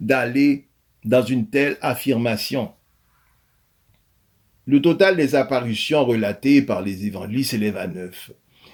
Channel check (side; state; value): both; identical; correlation 1.00